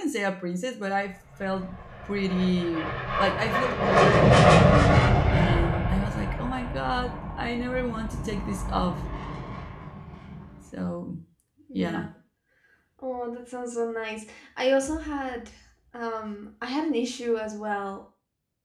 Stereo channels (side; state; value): both; identical; correlation 1.00